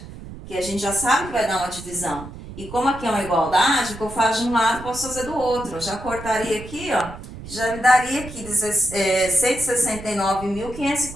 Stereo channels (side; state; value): right; noise; rumble, 13 dB below the sound